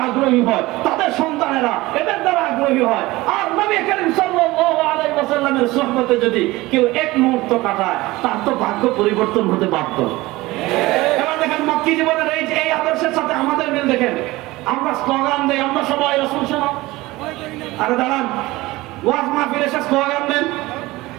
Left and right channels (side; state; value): left; quieter; 19.7 dB